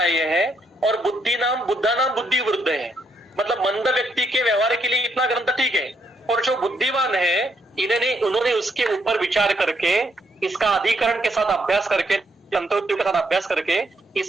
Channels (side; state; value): both; normal; correlation 0.75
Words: हैं और बुद्धानाम बुद्धि वृद्ध है, मतलब मंद व्यक्ति के व्यवहार के लिए इतना ग्रंथ ठीक है, और जो बुद्धिमान है उन्होंने उसके ऊपर विचार करके, इसका अधिकरण के साथ अभ्यास करके, तंत्रोक्तियों के साथ अभ्यास करके